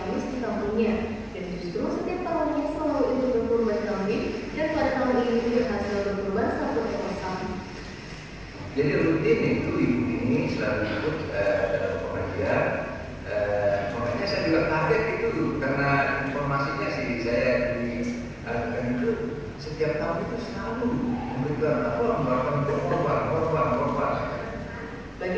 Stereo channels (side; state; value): both; identical; correlation 1.00